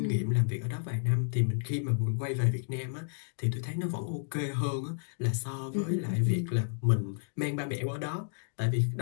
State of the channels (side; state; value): right; silent; digital silence